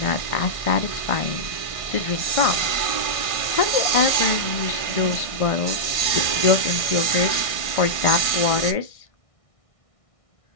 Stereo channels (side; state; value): right; late; 1.6 ms